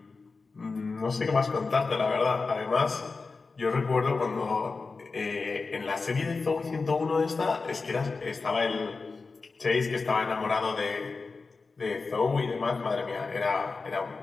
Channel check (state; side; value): quieter; right; 4.2 dB